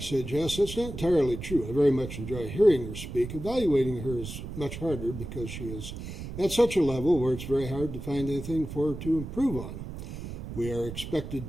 yes. That's not entirely true. I very much enjoy hearing her speak. Evaluating her is much harder because she is at such a level where it's very hard to find anything for her to improve on. We are expected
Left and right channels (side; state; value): right; noise; rumble, 9 dB below the sound